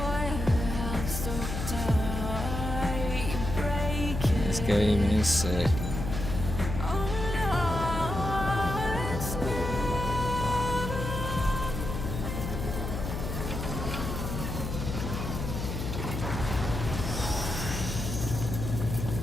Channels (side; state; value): left; noise; hum, 4 dB below the sound